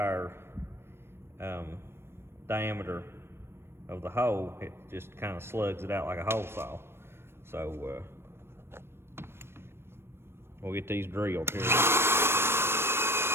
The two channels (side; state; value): left; late; 0.12 ms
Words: diameter of the hole. It just kind of slugs it out like a hole saw. So we'll get these drilled here.